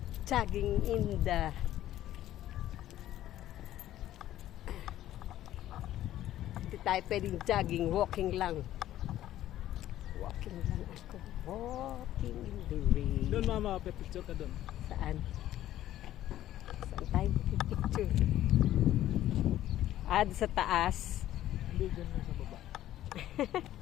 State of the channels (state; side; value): quieter; right; 13.1 dB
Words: Jogging in the hindi tayo pwedeng jogging, walking lang. Walking lang ako. Walking in the rain. Doon mama, picture ka doon. Saan? Saan tayo picture? Sa taas. Hindi, doon na sa baba.